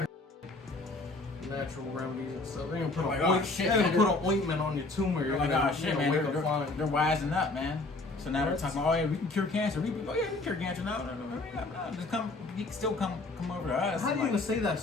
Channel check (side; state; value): right; quieter; 3.2 dB